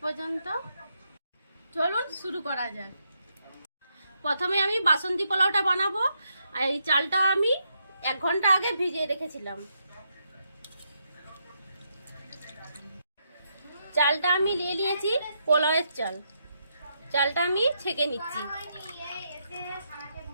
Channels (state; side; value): inverted; both; correlation -0.80